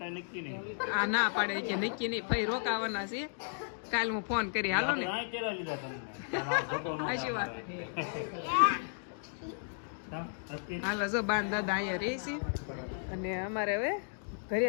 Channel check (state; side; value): silent; right; digital silence